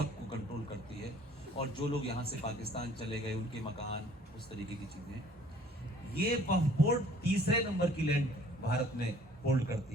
कंट्रोल करती है। और जो लोग यहाँ से पाकिस्तान चले गए उनके मकान, उस तरीके की चीज़ें, ये वक्फ बोर्ड तीसरे नंबर की लैंड भारत में होल्ड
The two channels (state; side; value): normal; both; correlation 0.55